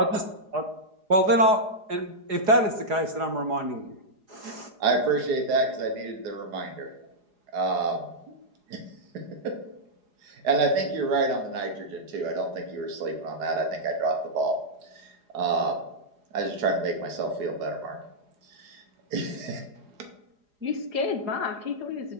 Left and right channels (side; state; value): left; late; 4.8 ms